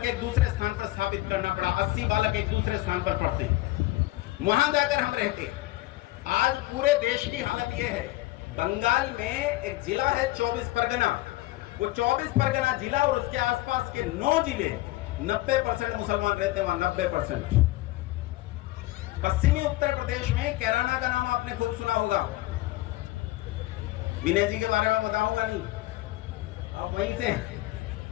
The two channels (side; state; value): right; quieter; 18.4 dB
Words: एक दूसरे स्थान पर स्थापित करना पड़ा। 80 बालक एक दूसरे स्थान पर पढ़ते हैं, वहां जाकर हम रहते हैं। आज पूरे देश की हालत यह है, बंगाल में एक जिला है 24 परगना, वो 24 परगना जिला और उसके आसपास के 9 जिले 90% मुसलमान रहते हैं वहां, 90%। पश्चिमी उत्तर प्रदेश में कैराना का नाम आपने खूब सुना होगा। विनय जी के बारे में बताऊंगा नहीं, अब वहीं से।